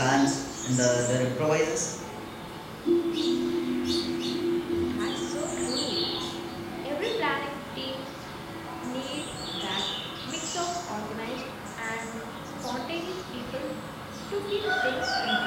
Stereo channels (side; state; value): both; identical; correlation 1.00